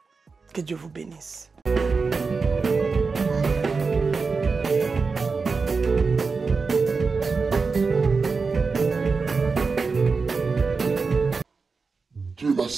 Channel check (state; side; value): quieter; left; 4.6 dB